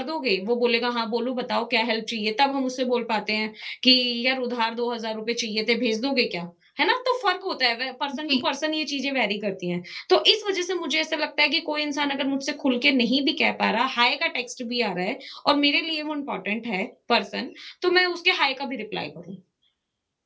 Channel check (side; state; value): both; identical; correlation 1.00